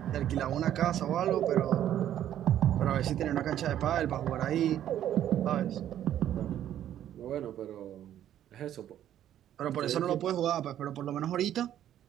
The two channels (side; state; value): left; quieter; 11.3 dB